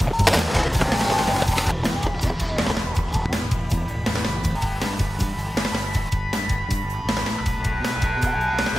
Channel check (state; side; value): normal; both; correlation 0.94